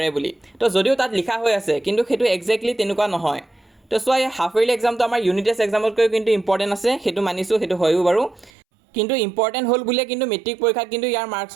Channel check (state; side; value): drops out; left; at 8.5 s